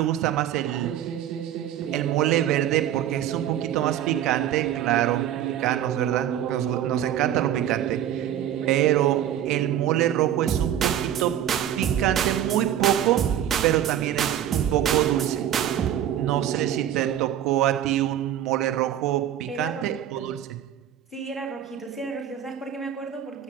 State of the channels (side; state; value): left; quieter; 10.9 dB